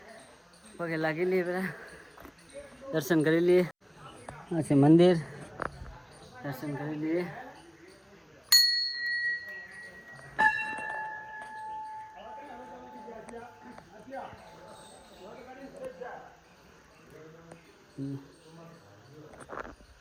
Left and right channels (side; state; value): both; identical; correlation 1.00